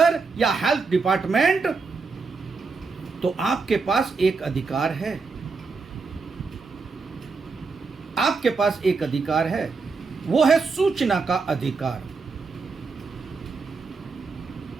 या हेल्थ डिपार्टमेंट, तो आपके पास एक अधिकार है, आपके पास एक अधिकार है, वो है सूचना का अधिकार।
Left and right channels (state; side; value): quieter; left; 4.5 dB